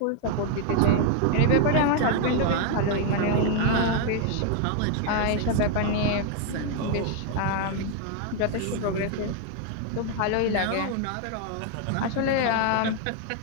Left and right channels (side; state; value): both; different; correlation 0.01